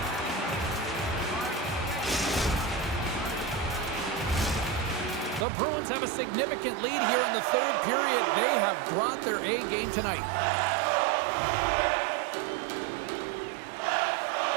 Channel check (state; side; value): drops out; left; at 5.5 s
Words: The Bruins have a significant lead here in the third period. They have brought their A game tonight.